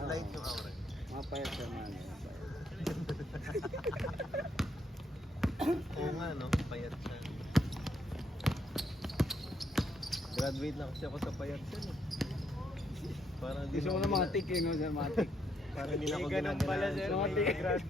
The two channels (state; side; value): normal; both; correlation 0.75